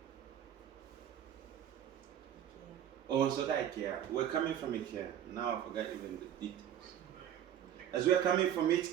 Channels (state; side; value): quieter; left; 10.3 dB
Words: On sautait à Ikea. We're coming from Ikea. Now I forgot even the details. As we're coming from